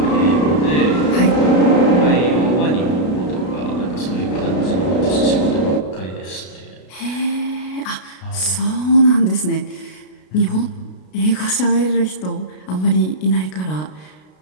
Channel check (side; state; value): right; late; 33 ms